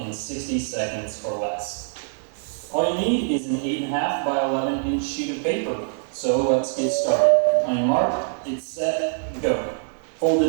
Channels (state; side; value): silent; left; 63 dB below the other